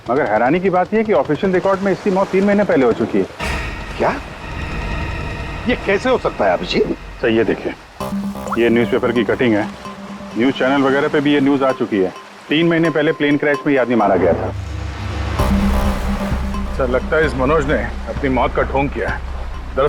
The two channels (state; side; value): identical; both; correlation 1.00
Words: मगर हैरानी की बात यह है कि ऑफिशियल रिकॉर्ड में इसकी मौत 3 महीने पहले हो चुकी है। क्या? ये कैसे हो सकता है अभिजीत? सर ये देखिए, ये न्यूज़पेपर की कटिंग है। न्यूज़ चैनल वगैरह पे भी ये न्यूज़ आ चुकी है। 3 महीने पहले प्लेन क्रैश में ये आदमी मारा गया था। सर लगता है इस मनोज ने अपनी मौत का ढोंग किया है।